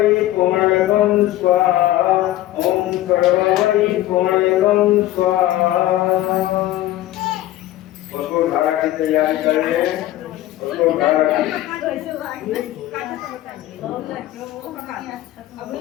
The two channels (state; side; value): quieter; right; 14.9 dB